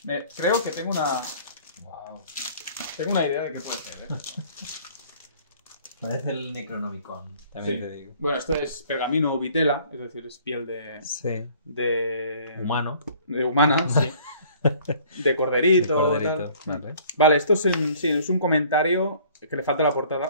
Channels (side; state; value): both; inverted; correlation -0.54